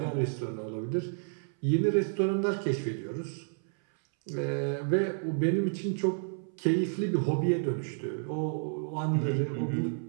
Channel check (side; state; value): left; silent; 57 dB below the other